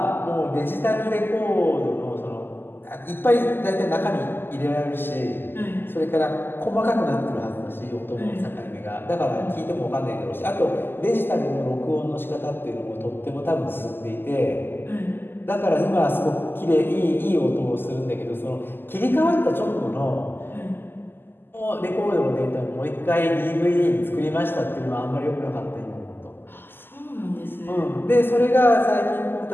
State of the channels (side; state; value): right; late; 0.099 ms